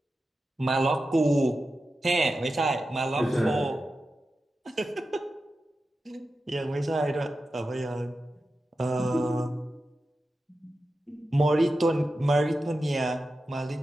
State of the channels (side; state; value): both; normal; correlation 0.92